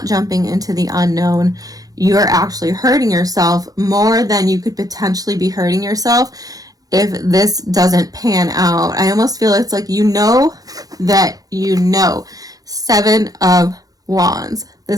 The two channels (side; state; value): left; late; 0.18 ms